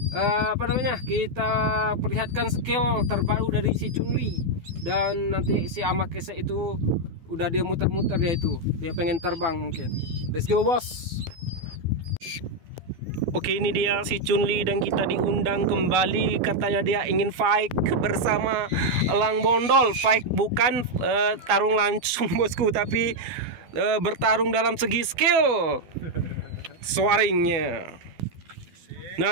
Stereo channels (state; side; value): late; left; 12 ms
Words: kita perlihatkan skill terbaru dari si Chunli. Dan nanti si Amakese itu udah dia muter-muter, dia pengen terbang mungkin. Let's go bos. Oke, ini dia si Chunli dan kita diundang kembali. Katanya dia ingin fight bersama elang bondol. Fight bukan tarung langsung bosku, tapi bertarung dalam segi skill swaringnya.